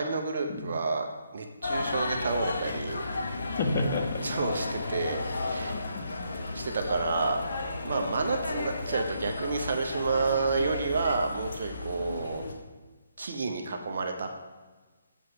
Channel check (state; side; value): inverted; both; correlation -0.76